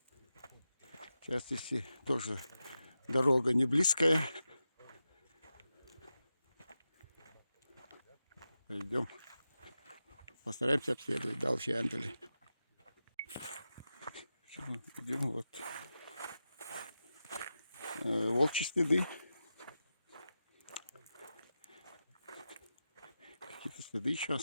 Сейчас здесь тоже дорога не близкая. Пойдем. Постараемся обследовать дальше Андали. Идем вот. Волчьи следы. Какие-то следы еще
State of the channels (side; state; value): both; inverted; correlation -0.91